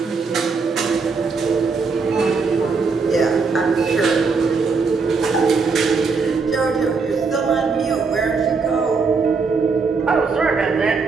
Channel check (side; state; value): left; quieter; 4.7 dB